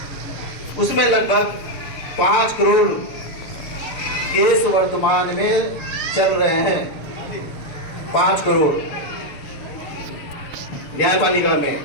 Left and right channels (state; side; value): late; right; 6.8 ms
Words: उसमें लगभग 5 करोड़ केस वर्तमान में चल रहे हैं। 5 करोड़ न्यायपालिका में,